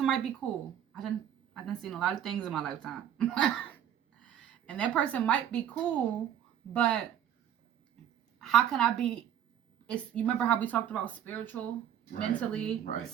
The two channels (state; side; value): quieter; left; 10.0 dB